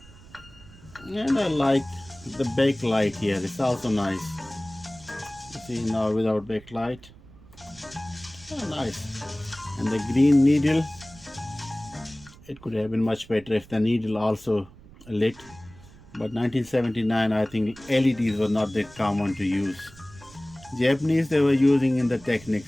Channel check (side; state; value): right; noise; rumble, 22 dB below the sound